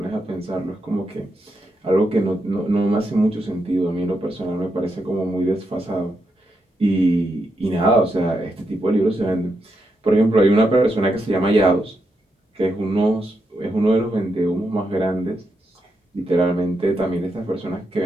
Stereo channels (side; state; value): both; normal; correlation 0.83